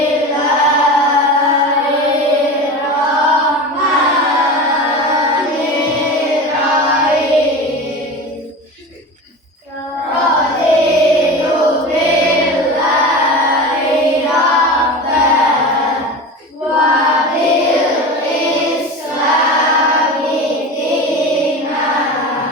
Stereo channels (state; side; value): normal; both; correlation 0.30